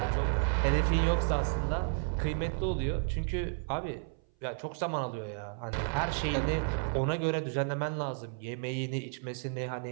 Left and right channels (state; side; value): silent; left; 56 dB below the other